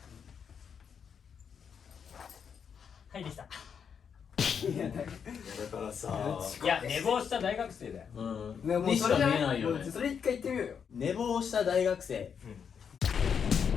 はいできた。だからさいや寝坊した大学生だよ。ねもうにしか見それじゃないえないよね。それ一回言ってみようよ。寝坊した大学生。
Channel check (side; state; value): right; quieter; 7.1 dB